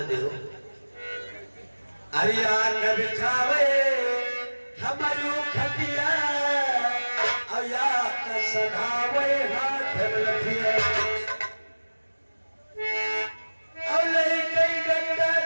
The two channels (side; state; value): both; inverted; correlation -1.00